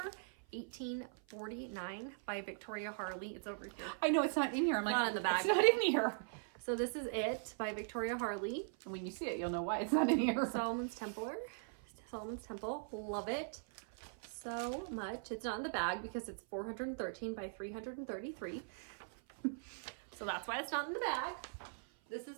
1849 by Victoria Harley. It's over here. I know it's not in here. I'm like, Not in the bag. It's not in here. So this is it by Victoria Harley. And when you see it, you'll know why it's not in here. Solomon's Temple. Love it so much. It's not in the bag because it's 413 by 333. So that's why it's not in the bag. This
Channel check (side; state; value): left; silent; 51 dB below the other